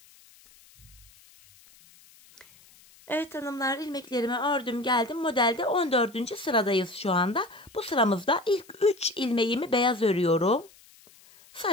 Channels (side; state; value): left; noise; hiss, 26 dB below the sound